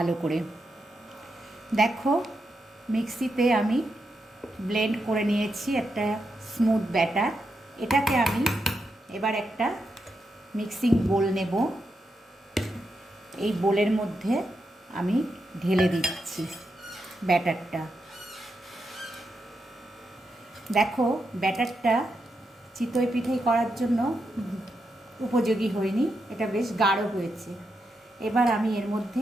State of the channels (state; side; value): normal; both; correlation 0.84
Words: করে। দেখো মিক্সিতে আমি ব্লেন্ড করে নিয়েছি একটা স্মুথ ব্যাটার। এটাকে আমি এবার একটা মিক্সিং বোল নেব, এই বোলের মধ্যে আমি ঢেলে দিচ্ছি ব্যাটারটা। দেখো ব্যাটারটা চিতই পিঠে করার জন্য উপযোগী হয়নি, এটা বেশ গাঢ় হয়েছে। এবার আমি এর